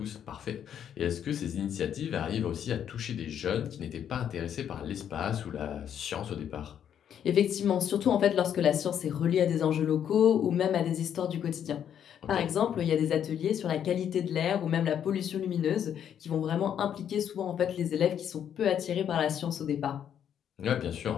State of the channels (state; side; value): quieter; right; 9.2 dB